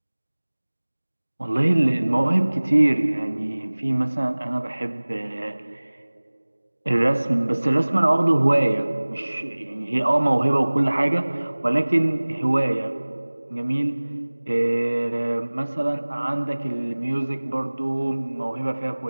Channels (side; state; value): both; inverted; correlation -1.00